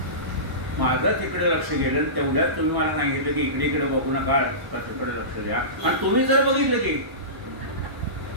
माझं तिकडे लक्ष गेलं तेवढ्यात तुम्ही मला सांगितलं की इकडे इकडे बघू नका तिकडे लक्ष द्या. आणि तुम्ही जर बघितलं की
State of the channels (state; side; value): late; left; 1.1 ms